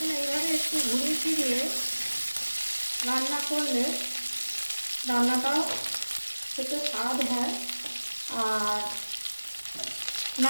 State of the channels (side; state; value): both; inverted; correlation -1.00